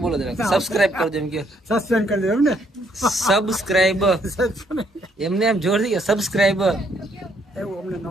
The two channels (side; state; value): both; normal; correlation 0.69